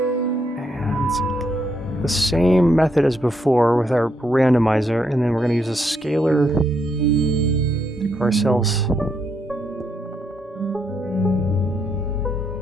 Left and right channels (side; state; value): both; normal; correlation 0.76